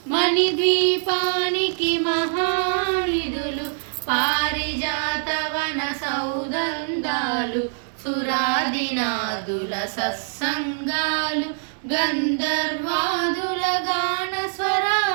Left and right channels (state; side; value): silent; left; 63 dB below the other